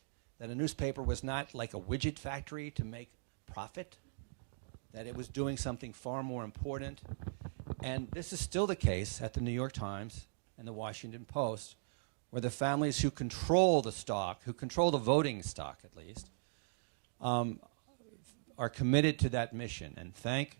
that a newspaper was not like a widget factory to make profit, that it was doing something far more important. And this is still the case at the New York Times and the Washington Post, where the families who control the stock, who control the voting stock at least, are committed to that mission. And thank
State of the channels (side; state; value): left; silent; digital silence